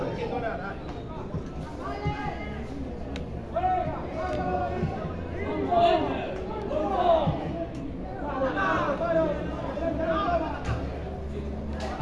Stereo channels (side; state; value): both; identical; correlation 1.00